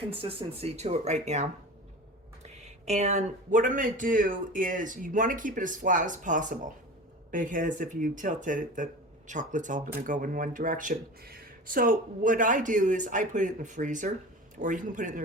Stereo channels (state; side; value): normal; both; correlation 0.34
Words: to it right now. And what I'm going to do is you want to keep it as flat as possible because if you tilt it, the chocolate's all going to go in one direction. So what I do is I put it in the freezer, or you can put it in the